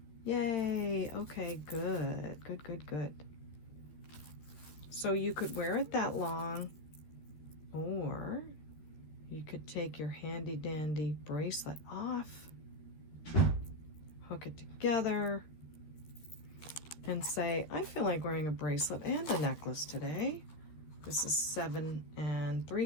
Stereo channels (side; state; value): right; late; 13 ms